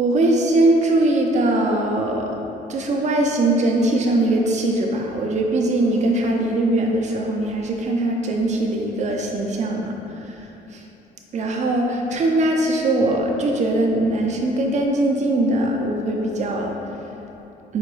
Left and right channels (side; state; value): both; normal; correlation 0.58